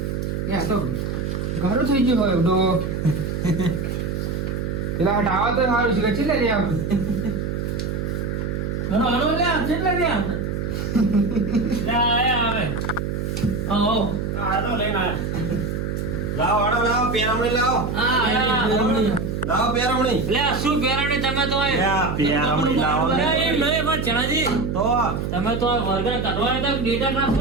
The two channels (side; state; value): right; noise; hum, 2 dB below the sound